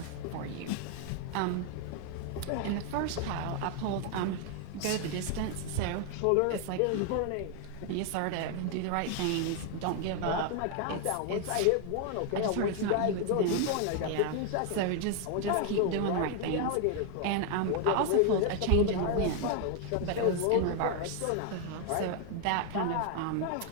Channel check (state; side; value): different; both; correlation 0.00